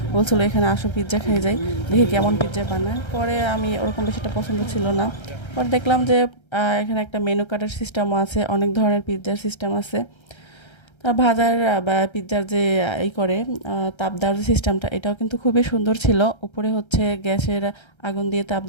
বলছিল এখানে আসো পিৎজা খেয়ে যাই, দেখি কেমন পিৎজা বানায়। পরে আমি ওরকম বেশি একটা পছন্দ ছিল না। পরে দেখলাম যে এখানে একটা মেনু কার্ডের সিস্টেমও আছে, অনেক ধরনের পিৎজার সিস্টেম আছে। ভাজার বা পিৎজার যে করে তাপ দেওয়ার যে সিস্টেমটা, এটাও কিন্তু খুবই সুন্দর ছিল। উপরে গ্যাসের আগুন দিয়ে তাপ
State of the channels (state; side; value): late; right; 1.3 ms